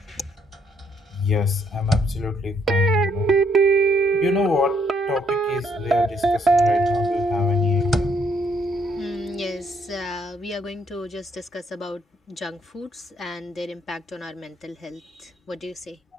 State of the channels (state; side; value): normal; both; correlation 0.70